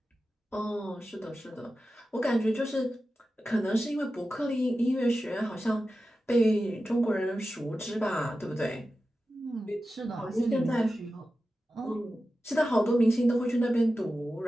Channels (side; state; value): both; normal; correlation 0.93